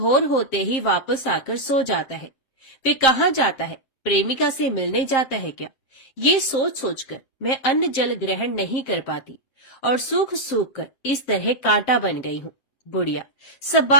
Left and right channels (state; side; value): late; right; 7.5 ms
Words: होते ही वापस आकर सो जाता है। वे कहाँ जाता है? प्रेमिका से मिलने जाता है क्या? ये सोच सोचकर मैं अन्न जल ग्रहण नहीं कर पाती और सूख सूख कर इस तरह कांटा बन गई हूँ। बुढ़िया सब